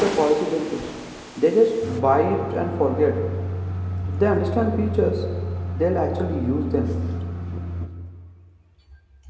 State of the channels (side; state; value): both; identical; correlation 1.00